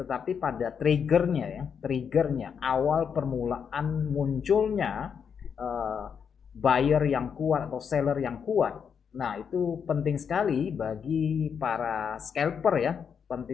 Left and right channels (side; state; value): right; quieter; 7.0 dB